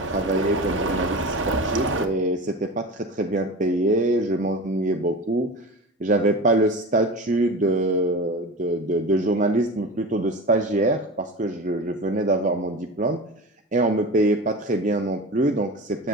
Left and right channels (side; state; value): both; normal; correlation 0.31